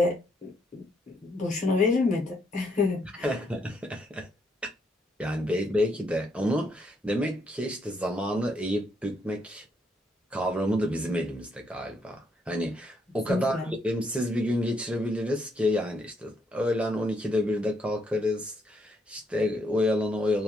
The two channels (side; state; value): both; normal; correlation 0.74